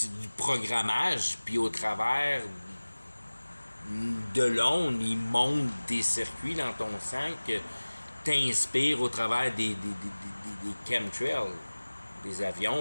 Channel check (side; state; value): both; inverted; correlation -1.00